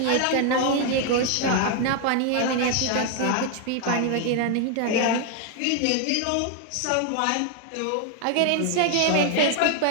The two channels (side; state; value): both; different; correlation 0.00